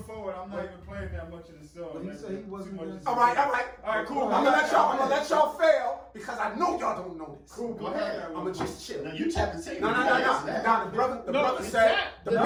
forward, I'm not even playing that much of the song. But he said he wasn't Too much gonna- of the All right. All right, cool. I'm gonna let y'all fail because I know y'all don't know this. Cool, Go ahead. I'm gonna just chill. Now you tap the table. No. Now the brother No, said. tap. The No,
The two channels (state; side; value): identical; both; correlation 1.00